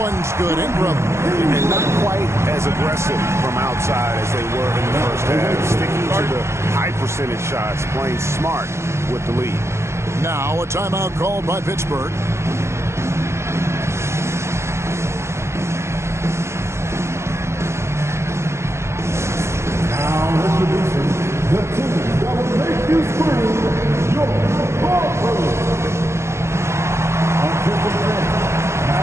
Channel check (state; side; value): late; left; 0.13 ms